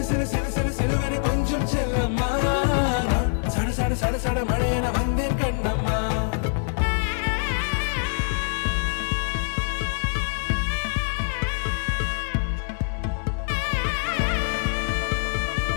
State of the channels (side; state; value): right; silent; 62 dB below the other